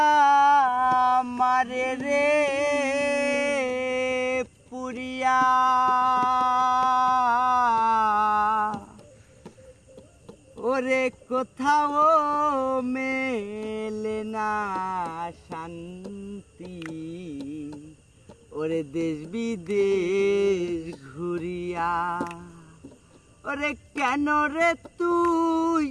মারে রে পুরিয়া ওরে কোথাও মেলে না শান্তি ওরে দেশ বিদেশ ঘুরিয়া ওরে কেন রে তুই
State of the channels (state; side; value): identical; both; correlation 1.00